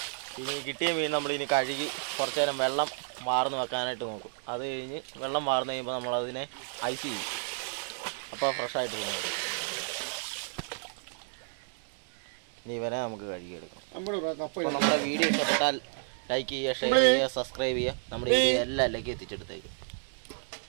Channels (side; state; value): left; silent; digital silence